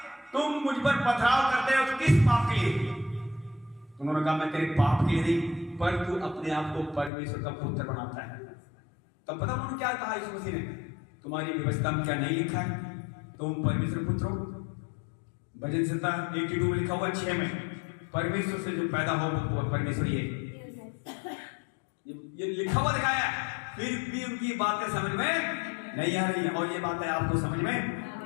तुम मुझ पर पथराव करते हो तो किस पाप के लिए? उन्होंने कहा, मैं तेरे पाप के लिए नहीं, पर तू अपने आप को परमेश्वर का पुत्र बनाता है। तब पता उन्होंने क्या कहा यीशु मसीह ने? तुम्हारी व्यवस्था में क्या नहीं लिखा है तुम परमेश्वर पुत्र हो? भजन संहिता 82 में लिखा हुआ 6 में, परमेश्वर से जो पैदा हो वो परमेश्वर ही है। ये लिखा हुआ दिखाया है, फिर भी उनकी बातें समझ में नहीं आ रही है। और ये बातें आपको समझ में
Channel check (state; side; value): drops out; right; at 7.1 s